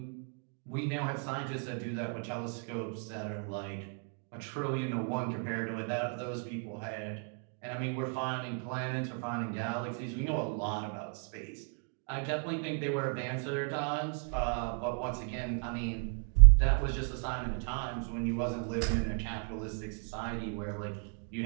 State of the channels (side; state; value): left; quieter; 39.8 dB